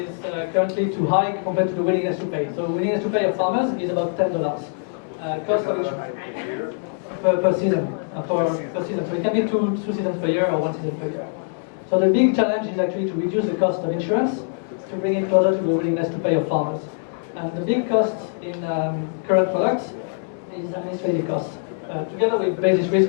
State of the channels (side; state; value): right; silent; digital silence